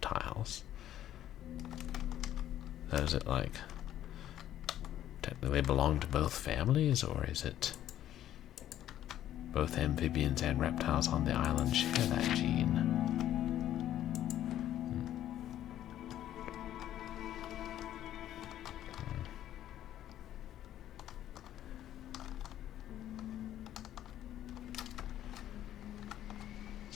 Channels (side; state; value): right; quieter; 12.0 dB